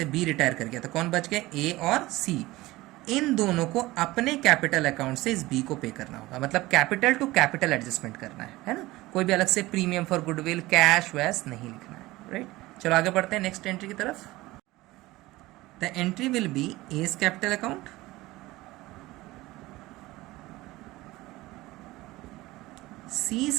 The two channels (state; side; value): quieter; left; 18.9 dB